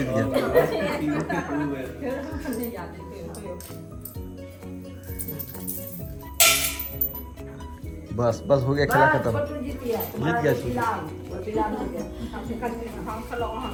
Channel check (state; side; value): identical; both; correlation 1.00